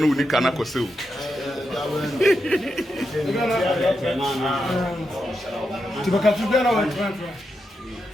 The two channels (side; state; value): both; normal; correlation 0.86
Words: we can go see.